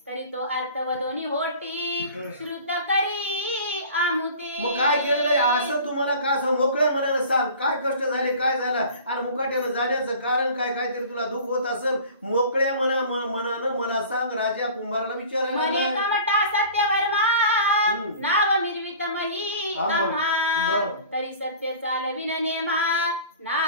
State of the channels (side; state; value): both; inverted; correlation -0.43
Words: तरी तो अर्थ वदोनी होटी श्रुत करी आमुते. मग काय केलेलं असं तुम्हाला का असं मोकळ्या मनानं सांग, काय कष्ट झाले, काय झालं आणि मुकाट्यानं जाण्याचं कारण काय, काहीतरी तुला दुःख होत असेल, मोकळ्या मनानं मला सांग. राजा कुंभाराला विचारायला मने कमटा सत्यवर्मा नाव मिरवित मही आम्हा, तरी सत्य चालविन नेमा